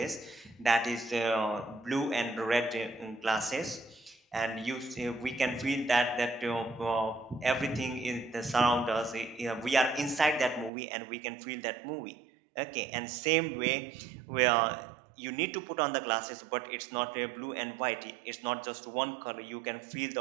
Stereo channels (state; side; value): drops out; left; at 10.7 s